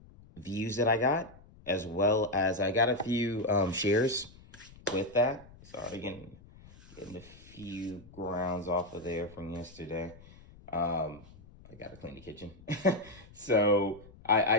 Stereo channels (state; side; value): noise; left; rumble, 22 dB below the sound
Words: views that I got, as well as I got a few shares with that. Sorry, getting a few grounds off of there from yesterday. I got to clean the kitchen. So I